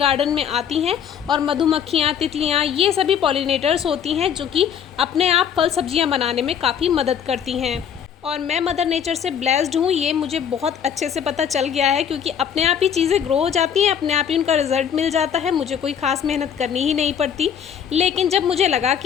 में आती हैं और मधुमक्खियाँ, तितलियाँ, ये सभी पॉलिनेटर्स होती हैं, जो कि अपने आप फल सब्जियाँ बनाने में काफ़ी मदद करती हैं। और मैं मदर नेचर से ब्लेस्ड हूँ, ये मुझे बहुत अच्छे से पता चल गया है, क्योंकि अपने आप ही चीज़ें ग्रो हो जाती हैं, अपने आप ही उनका रिजल्ट मिल जाता है, मुझे कोई ख़ास मेहनत करनी ही नहीं पड़ती। लेकिन जब मुझे लगा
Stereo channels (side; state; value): right; quieter; 8.2 dB